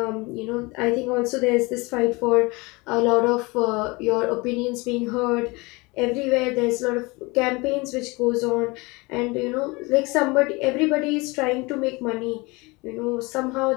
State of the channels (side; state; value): right; quieter; 25.1 dB